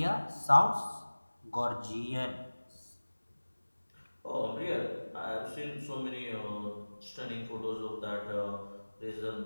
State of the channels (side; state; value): both; inverted; correlation -1.00